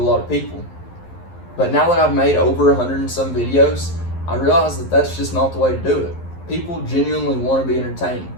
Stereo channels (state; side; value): late; right; 11 ms